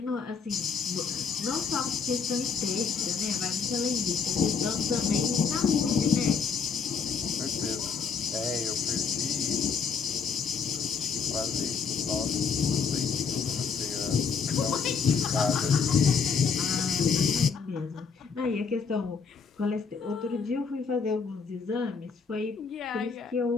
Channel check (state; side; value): quieter; right; 5.7 dB